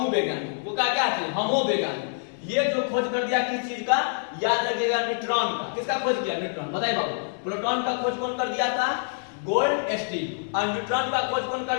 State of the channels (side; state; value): right; silent; 59 dB below the other